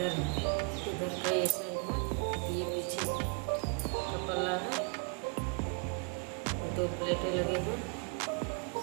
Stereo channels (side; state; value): left; quieter; 37.6 dB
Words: का ये साइड है, ये पीछे का पल्ला है, 2 प्लेटें लगे हैं।